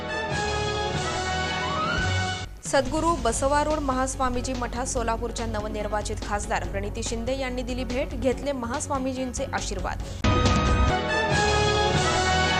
सद्गुरू बसवारूढ महास्वामीजी मठात सोलापूरच्या नवनिर्वाचित खासदार प्रणिती शिंदे यांनी दिली भेट. घेतले महास्वामीजींचे आशीर्वाद.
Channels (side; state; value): both; identical; correlation 1.00